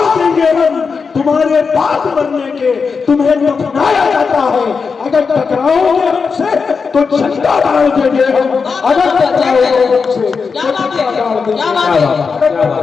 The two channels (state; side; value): quieter; right; 5.2 dB